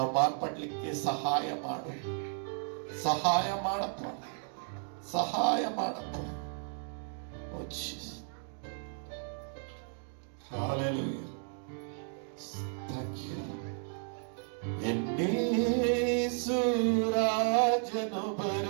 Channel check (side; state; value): left; silent; 55 dB below the other